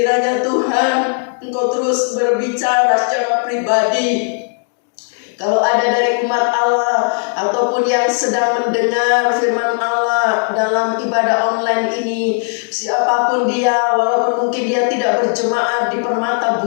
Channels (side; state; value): right; silent; 63 dB below the other